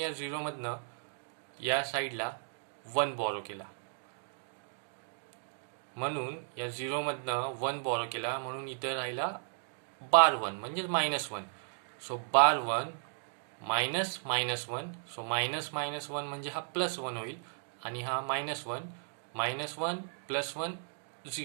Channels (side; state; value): left; silent; digital silence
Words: 0 मधनं या साईडला 1 बॉरो केला. म्हणून या 0 मधनं 1 बॉरो केला म्हणून इथे राहिला बार 1 म्हणजेच -1. सो बार 1 -1. सो -1 म्हणजे हा +1 होईल आणि हा -1. -1 + 1